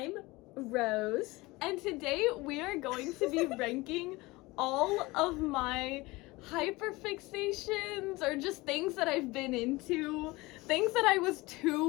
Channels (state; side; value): quieter; right; 21.8 dB